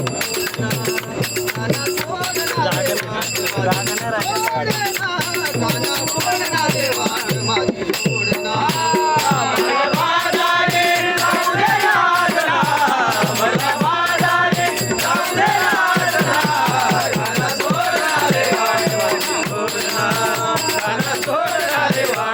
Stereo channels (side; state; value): both; identical; correlation 1.00